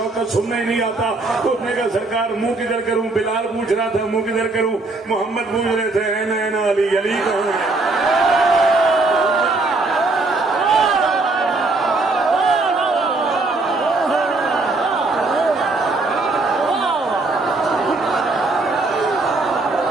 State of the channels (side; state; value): left; quieter; 3.4 dB